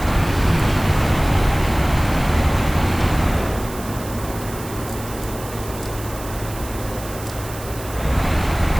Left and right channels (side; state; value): right; noise; hiss, 14 dB below the sound